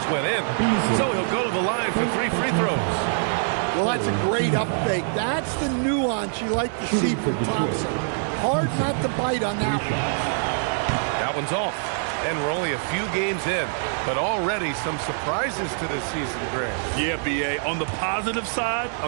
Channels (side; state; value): left; silent; digital silence